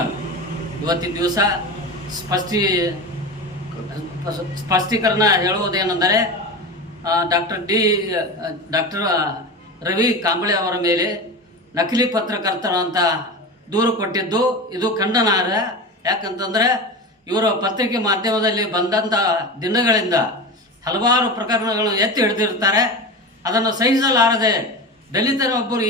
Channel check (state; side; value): normal; both; correlation 0.27